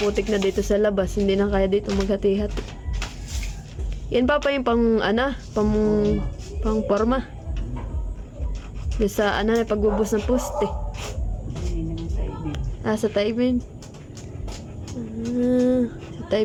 na dito sa labas, hindi na kaya dito maghati-hati. Yan Papa yung pang forma. Yung sa pagbubus ng poste. Sa Tayben. Sa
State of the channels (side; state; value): both; identical; correlation 1.00